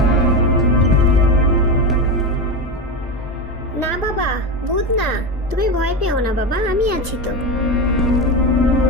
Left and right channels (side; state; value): both; normal; correlation 0.18